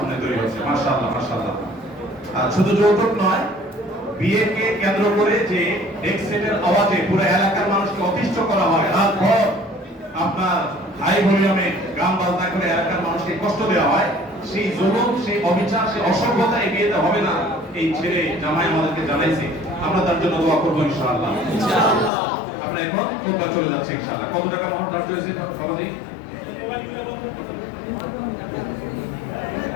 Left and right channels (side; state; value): right; drops out; at 22.1 s